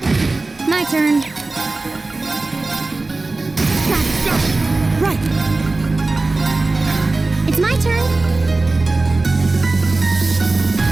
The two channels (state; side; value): quieter; left; 3.3 dB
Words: My turn. Got it. Go. Right. It's my turn.